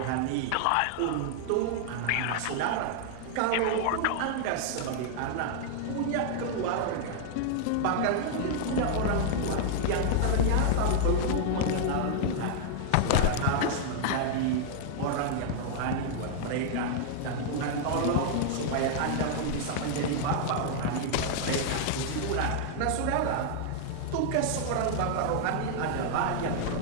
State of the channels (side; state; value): both; different; correlation -0.01